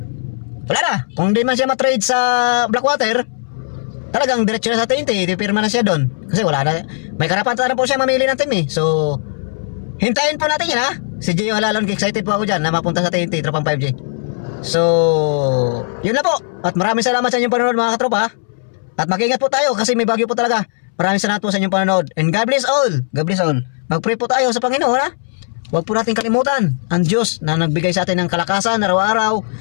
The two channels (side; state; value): right; silent; 67 dB below the other